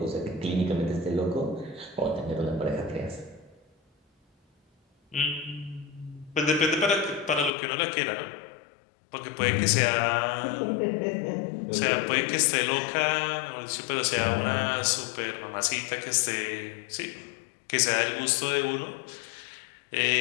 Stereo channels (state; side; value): drops out; right; at 7.5 s